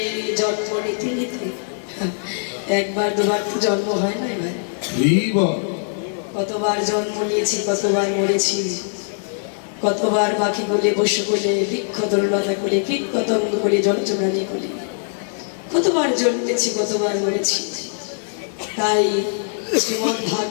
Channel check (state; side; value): silent; right; digital silence